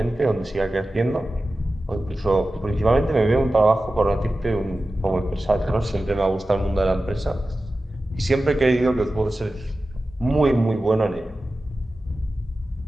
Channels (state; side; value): normal; both; correlation 0.94